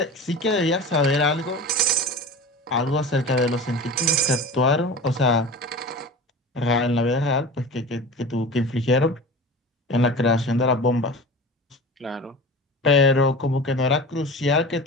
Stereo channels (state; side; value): normal; both; correlation 0.33